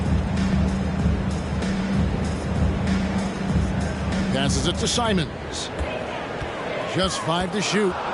Passes it to Simons. Just 5 to shoot.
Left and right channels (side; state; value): both; identical; correlation 1.00